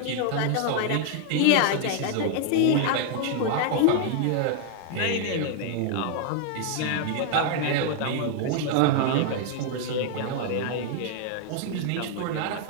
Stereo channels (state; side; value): different; both; correlation 0.00